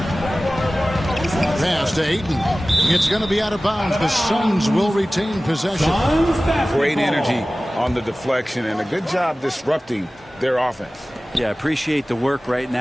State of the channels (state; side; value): normal; both; correlation 0.97